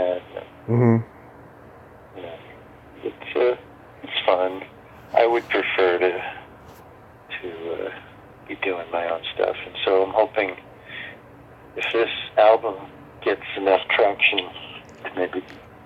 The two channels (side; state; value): both; identical; correlation 1.00